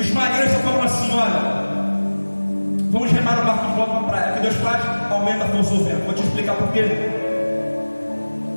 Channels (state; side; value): inverted; both; correlation -1.00